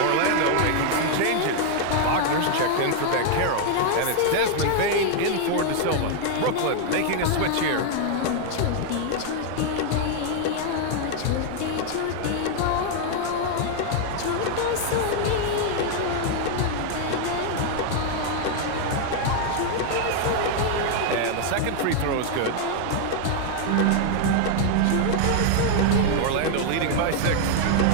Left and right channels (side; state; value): both; different; correlation 0.00